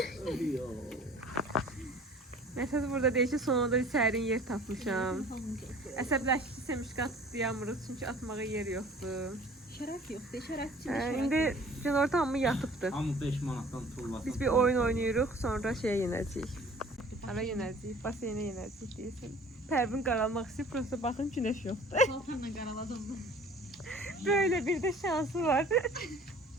Məsəl burada deyir ki, sonunda bir sərin yer tapmışam. Əsəbləşdiysə müşkat atlayamırıq çünki atmağa yer yoxdur. Şərəf yoxdur, şərəf üçün İndi günorta hamı yatıbdı. Hamı 5 manatdan tullasın. Biz bir oyun oynayırıq, sonra şeyə yenəcəyik. Hara yenəcəyik, baseynə yenəcəyik deyirsən. Pərvin qaralmaq istəyir, prosta baxın günəş yoxdur. paltarla qaraladım. Böyle bir de şansı var.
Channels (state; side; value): normal; both; correlation 0.49